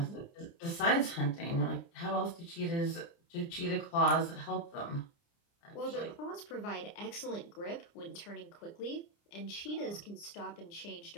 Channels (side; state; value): right; late; 29 ms